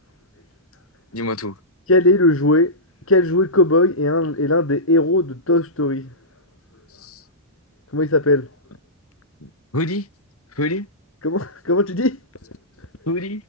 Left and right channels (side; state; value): both; normal; correlation -0.16